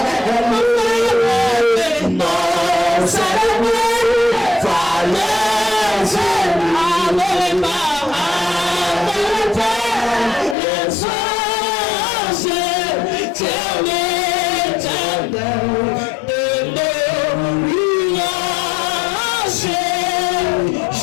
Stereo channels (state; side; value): drops out; right; at 10.6 s